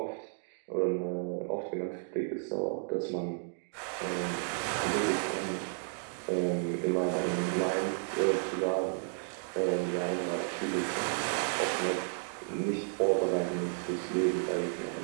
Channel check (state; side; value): silent; left; 56 dB below the other